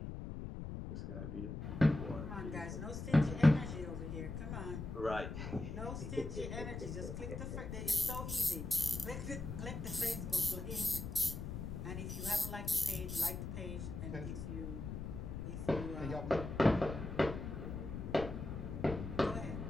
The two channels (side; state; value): left; noise; rumble, 6 dB below the sound